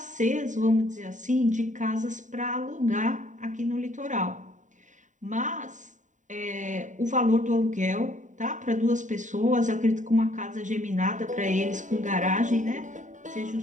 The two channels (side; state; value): left; late; 0.36 ms